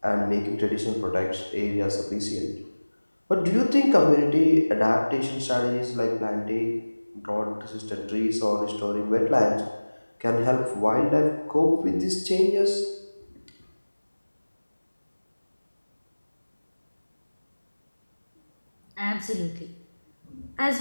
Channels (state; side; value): inverted; both; correlation -1.00